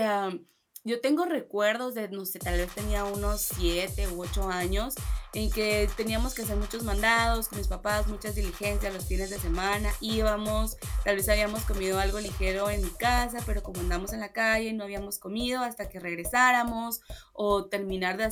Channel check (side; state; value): both; identical; correlation 1.00